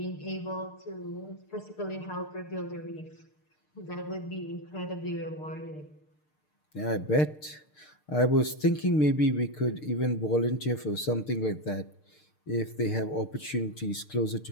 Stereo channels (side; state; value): right; late; 6.6 ms